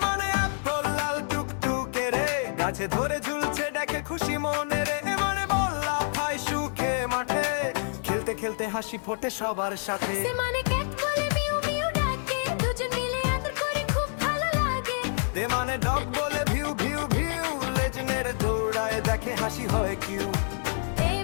মানে অ্যাপল লাল টুকটুকে রে গাছে ধরে ঝুলছে দেখে খুশি মনে রে এ মানে বল্লা ভাই সুখে মাঠে খেলতে খেলতে হাসি ফোটে সবার সাথে সে মানে ক্যাট বলে মিউ মিউ ডাকে দুজন মিলে আদর করে খুব ভালো লাগে দে মানে ডগ বলে ভিউ ভিউ ভিউ লেজনের দৌড়ায় দেখে হাসি হয় Q A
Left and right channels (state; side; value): silent; right; digital silence